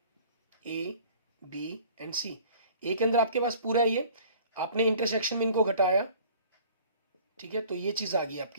A B and C. A के अंदर आपके पास पूरा ये, आपने इंटरसेक्शन में इनको घटाया, ठीक है, तो ये चीज आ गई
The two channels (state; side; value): inverted; both; correlation -0.49